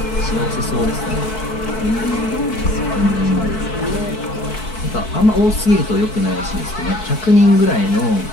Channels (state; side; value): late; right; 4.6 ms